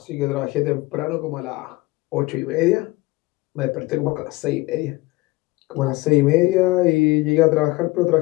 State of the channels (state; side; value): quieter; right; 21.6 dB